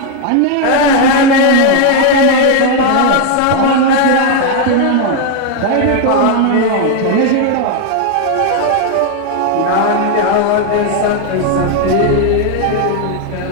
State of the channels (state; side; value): different; both; correlation 0.01